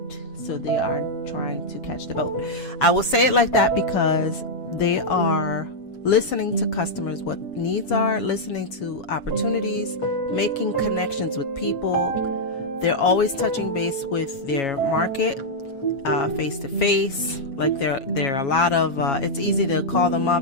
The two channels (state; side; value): late; right; 7.3 ms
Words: so they are trying to catch the boat. I will say it like that because they are listening to customers, what needs are, listening to opportunities, making connections with people. They're always touching base with their market, face to face. Like there are a lot of, it's easy to call them